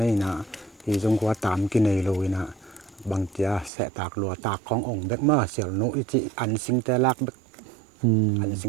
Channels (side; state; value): left; drops out; at 3.7 s